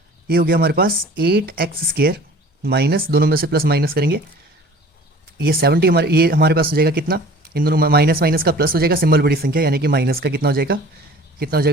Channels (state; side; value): normal; both; correlation 0.46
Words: हो गया हमारे पास 8x स्क्वायर माइनस, दोनों में से प्लस माइनस करेंगे, ये 70 ये हमारे पास हो जाएगा कितना, इन दोनों माइनस माइनस का प्लस हो जाएगा, सिंबल बड़ी संख्या, यानी कि माइनस का कितना हो जाएगा